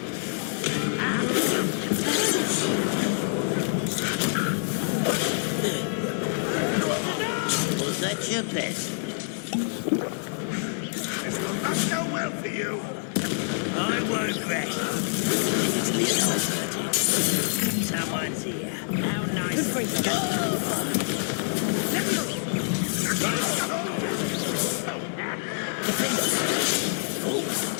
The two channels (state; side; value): silent; right; 60 dB below the other